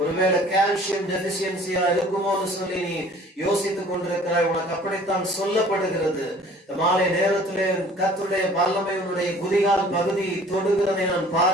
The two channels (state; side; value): normal; both; correlation 0.51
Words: ஒருவேளை கால்சியம் டெபிசியன்சியா இருக்குமோன்னு சொல்லி நீ யோசித்துக் கொண்டிருக்கிறாய், உனக்கு அப்படித்தான் சொல்லப்படுகிறது. இந்த மாலை நேரத்திலே கர்த்தருடைய வல்லமை உன்னுடைய குதிகால் பகுதி தொடுகிறதை நான்